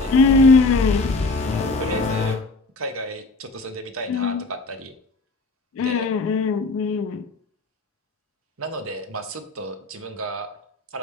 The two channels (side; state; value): right; quieter; 3.4 dB